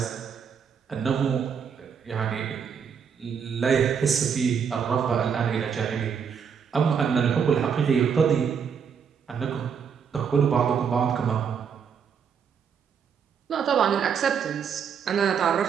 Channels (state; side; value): quieter; left; 7.0 dB